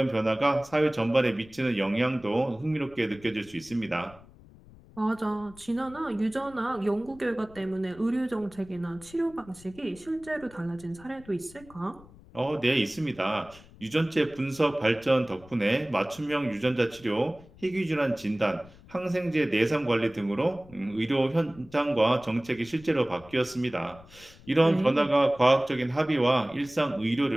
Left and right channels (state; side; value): noise; left; rumble, 23 dB below the sound